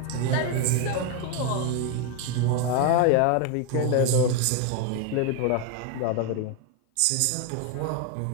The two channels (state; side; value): different; both; correlation 0.01